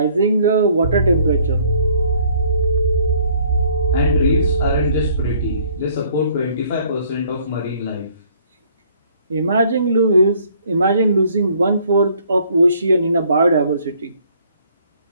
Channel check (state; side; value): inverted; both; correlation -0.61